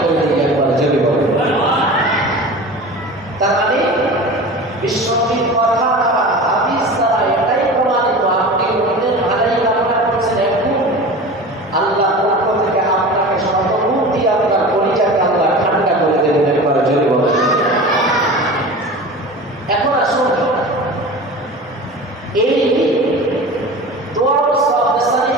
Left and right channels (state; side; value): normal; both; correlation 0.34